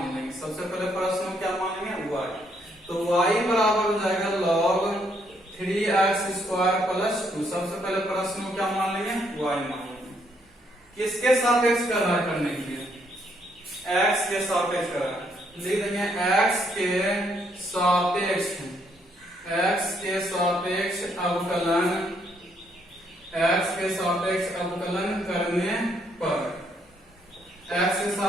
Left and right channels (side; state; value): both; normal; correlation 0.72